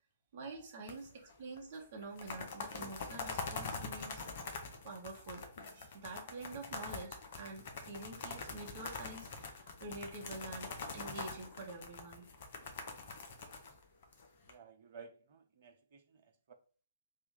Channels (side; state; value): both; inverted; correlation -0.45